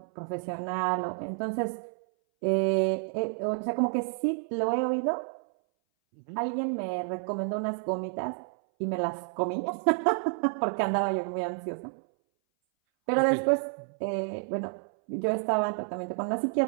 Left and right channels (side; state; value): left; silent; 58 dB below the other